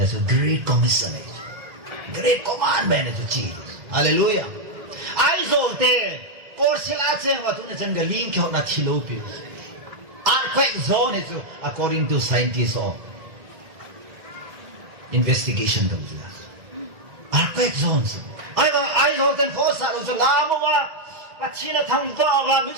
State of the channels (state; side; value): late; left; 1.9 ms